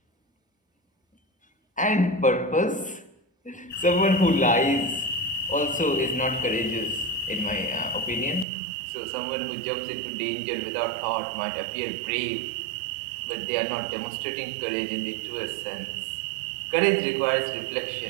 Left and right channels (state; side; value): drops out; left; at 8.5 s